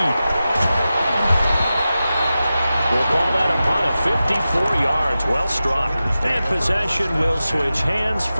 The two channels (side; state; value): both; inverted; correlation -0.93